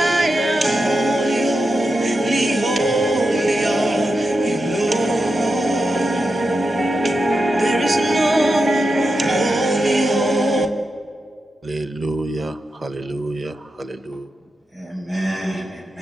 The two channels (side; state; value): both; normal; correlation 0.88